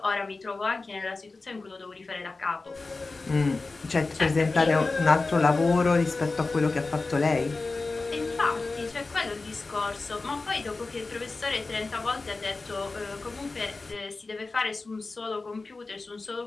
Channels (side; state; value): right; quieter; 3.6 dB